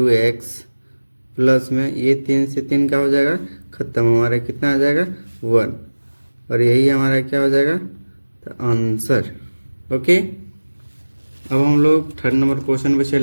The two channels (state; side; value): inverted; both; correlation -1.00